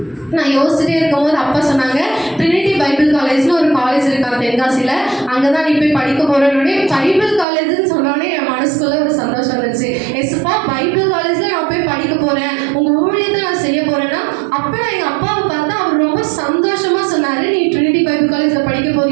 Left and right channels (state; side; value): drops out; left; at 7.5 s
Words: நான் யோசிச்சுட்டே இருக்கும்போது அப்பா சொன்னாங்க, ட்ரினிட்டி பைபிள் காலேஜ்னு ஒரு காலேஜ் இருக்காங்க தென்காசியில், அங்கே தான் நீ போய் படிக்க போகிறேன்னே. பைபிள் காலேஜ்னு சொன்னோடனே என் மனசுக்குள்ளே ஒரு சந்தோஷம் வந்துச்சு. எஸ்ப்பா பைபிள் காலேஜில் நான் போய் படிக்க போகிறேன், உங்கள் ஊழியத்தை நான் செய்ய போகிறேன்னா. அப்போ நான் எங்கள் அப்பாவை பார்த்தா அவர் ரொம்ப சந்தோஷமாக சொன்னார், நீ ட்ரினிட்டி பைபிள் காலேஜில் படிக்க